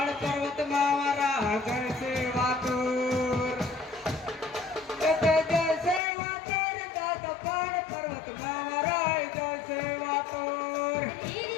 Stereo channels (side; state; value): right; drops out; at 6.0 s